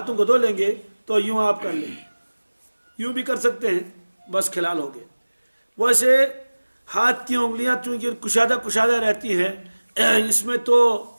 کو دھو لیں گے تو یوں آپ کر لیں، یوں بھی کر سکتے ہیں، بس خلال ہو گئے۔ ویسے ہاتھ کی انگلیاں چونکہ کشادہ رہتی ہیں، اس میں تو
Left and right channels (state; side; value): inverted; both; correlation -1.00